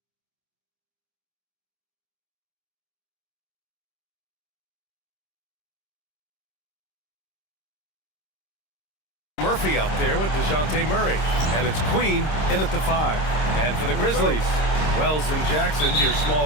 Murphy out there with DeJounte Murray. And it's Queen in at the 5. And for the Grizzlies, Wells and Jackson, your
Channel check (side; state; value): right; late; 26 ms